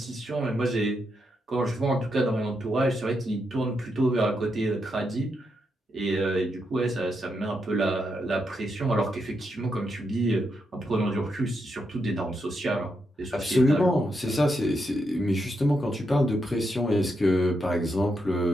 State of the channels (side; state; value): both; normal; correlation 0.82